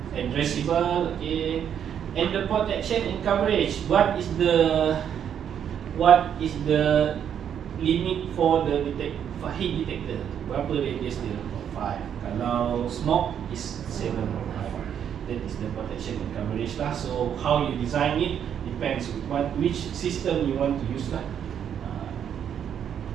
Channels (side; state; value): left; quieter; 8.8 dB